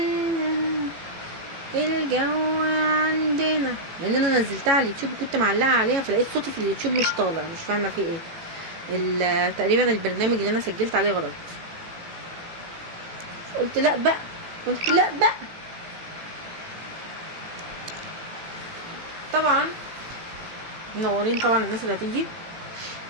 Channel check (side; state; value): left; late; 18 ms